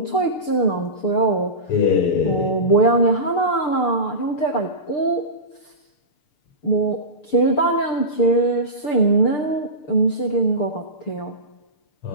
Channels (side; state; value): right; late; 6.7 ms